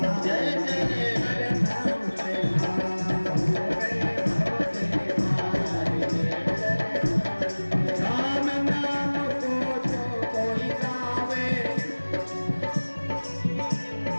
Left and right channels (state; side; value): inverted; both; correlation -1.00